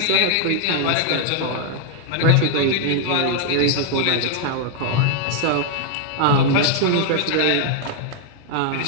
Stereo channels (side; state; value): both; different; correlation 0.00